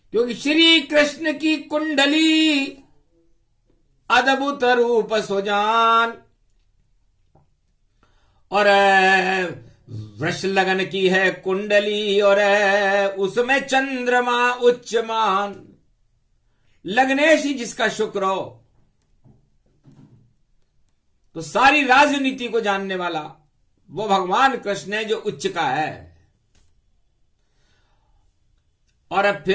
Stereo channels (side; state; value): both; identical; correlation 1.00